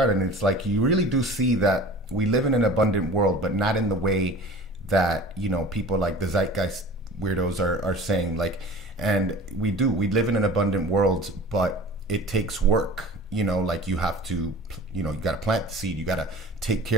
And it's like, you really do see that we live in an abundant world, but not in the way that, you know, people like the zeitgeist weirdos are saying. Like, and we live in an abundant world, but it takes work. You know, like, you have to, you know, you got to plant the seed, you got to take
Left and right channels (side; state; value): both; normal; correlation 0.40